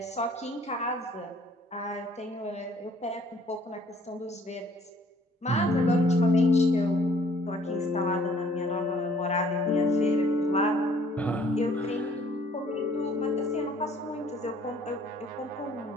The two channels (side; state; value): both; normal; correlation 0.59